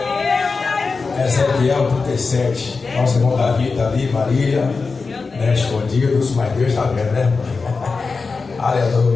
Ezequiel 37. Nosso irmão Davi está ali, Marília, né, escondidos, mas Deus está vendo, né?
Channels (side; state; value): right; quieter; 4.4 dB